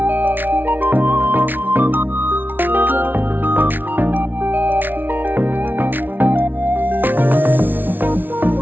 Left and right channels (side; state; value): left; late; 0.091 ms